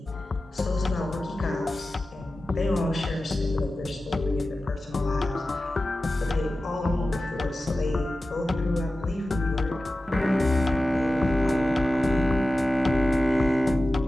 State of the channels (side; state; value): both; normal; correlation 0.94